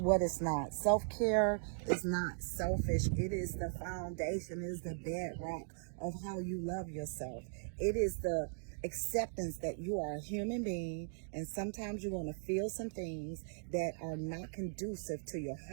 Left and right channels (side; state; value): left; silent; digital silence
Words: what it's not. Self-care is not selfish. It is the foundation, it is the bedrock of how you love yourself. It is the acceptance that you are a human being, and sometimes you're going to feel some things that are not conducive to your